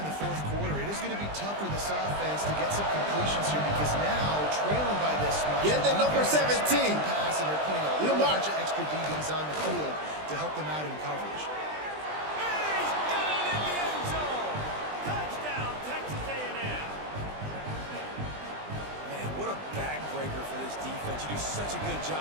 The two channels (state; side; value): late; left; 20 ms